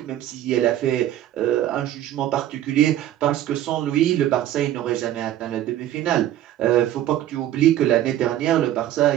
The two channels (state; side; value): quieter; left; 12.6 dB